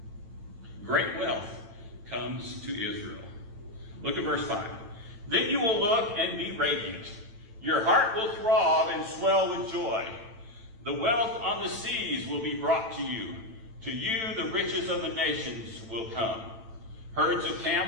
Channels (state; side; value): late; left; 9.0 ms